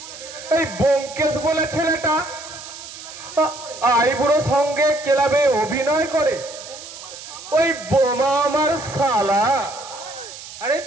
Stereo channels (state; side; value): noise; right; hiss, 14 dB below the sound